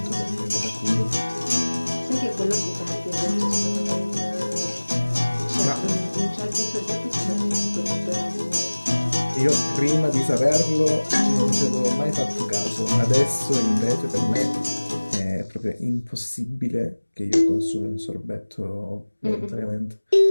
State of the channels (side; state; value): both; inverted; correlation -1.00